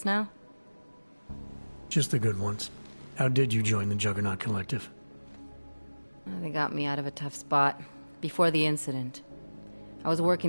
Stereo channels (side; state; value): both; inverted; correlation -1.00